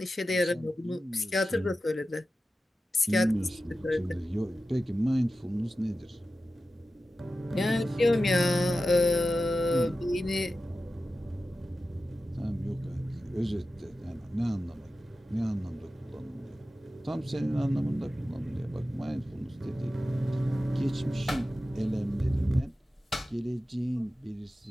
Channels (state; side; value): normal; both; correlation 0.93